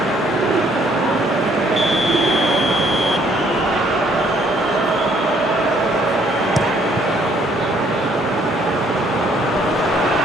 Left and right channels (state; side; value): normal; both; correlation 0.64